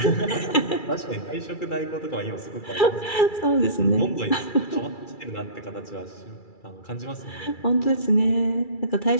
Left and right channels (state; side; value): late; right; 2.3 ms